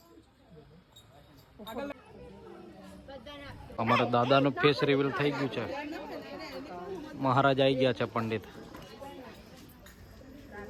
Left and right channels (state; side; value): identical; both; correlation 1.00